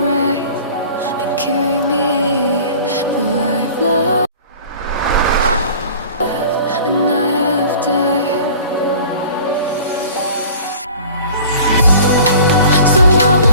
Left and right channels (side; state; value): both; inverted; correlation -0.45